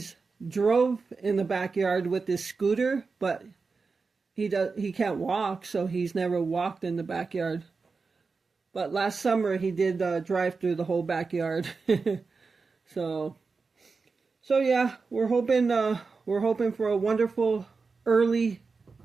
drove in the backyard with his scooter, but he can't walk, so he's never walked in the backyard. But last summer he did drive through the whole backyard. so yeah, we're hoping for a wonderful early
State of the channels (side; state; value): left; quieter; 4.5 dB